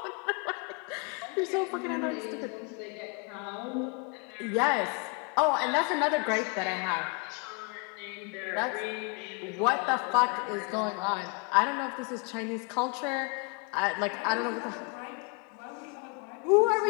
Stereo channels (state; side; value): quieter; right; 32.6 dB